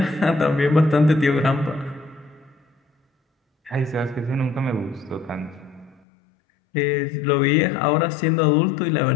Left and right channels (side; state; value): right; drops out; at 6.0 s